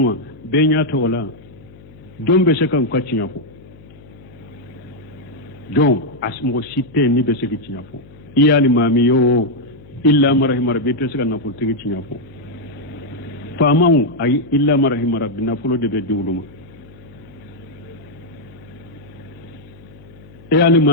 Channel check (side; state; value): left; noise; hum, 22 dB below the sound